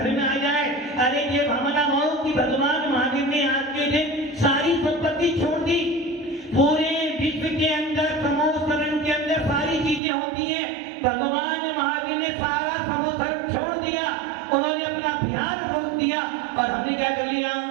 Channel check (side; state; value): left; drops out; at 10.0 s